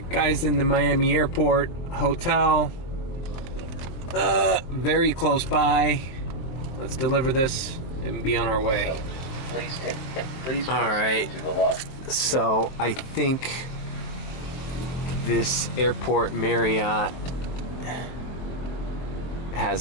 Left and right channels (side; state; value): right; late; 23 ms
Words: guys, in the Miami Airport Hotel, very close by. Let's deliver this and be on our way. Please. All right. So I think this airport Marriott